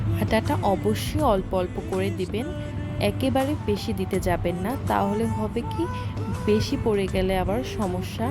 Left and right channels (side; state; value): both; identical; correlation 1.00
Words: আটাটা অবশ্যই অল্প অল্প করে দিবেন, একেবারে বেশি দিতে যাবেন না, তাহলে হবে কি বেশি পড়ে গেলে আবার সমস্যা,